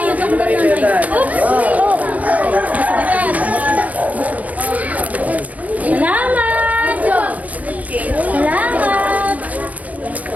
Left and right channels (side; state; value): left; late; 0.073 ms